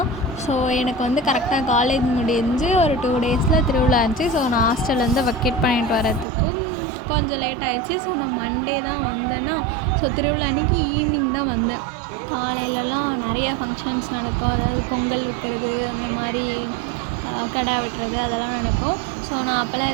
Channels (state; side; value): drops out; left; at 6.2 s